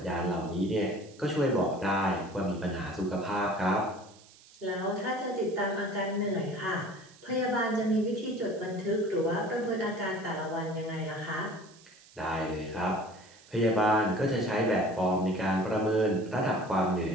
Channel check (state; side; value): noise; right; hiss, 24 dB below the sound